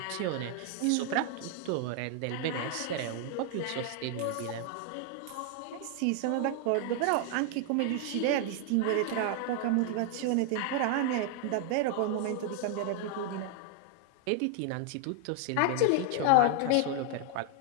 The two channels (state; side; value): different; both; correlation 0.00